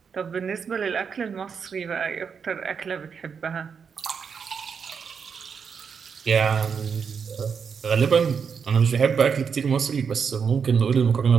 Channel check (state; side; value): quieter; left; 6.3 dB